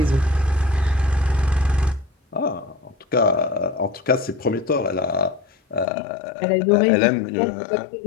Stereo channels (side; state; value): right; drops out; at 5.9 s